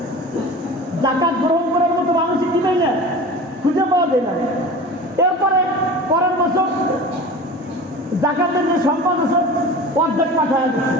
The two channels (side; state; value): both; normal; correlation 0.36